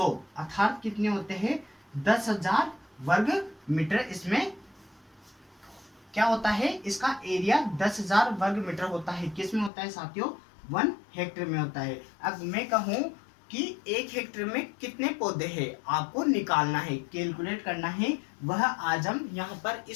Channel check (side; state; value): right; drops out; at 9.7 s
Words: अर्थात कितने होते हैं, 10,000 वर्ग मीटर। इसमें क्या होता है, इसका एरिया 10,000 वर्ग मीटर होता है। किस में होता है साथियों, 1 हेक्टेयर में होता है। अब मैं कहूं कि 1 हेक्टेयर में कितने पौधे हैं, आपको निकालना है, कैलकुलेट करना है, वह आज हम यहाँ पर